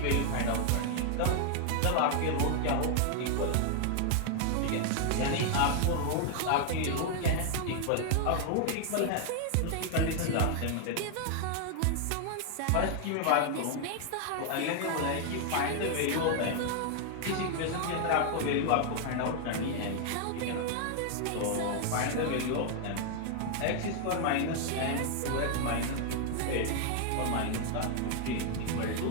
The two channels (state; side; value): different; both; correlation 0.00